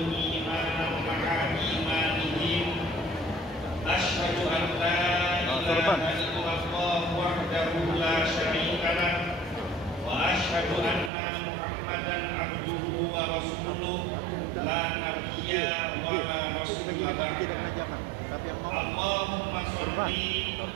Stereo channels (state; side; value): drops out; left; at 11.1 s